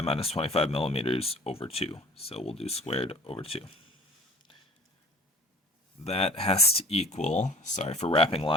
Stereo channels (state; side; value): normal; both; correlation 0.46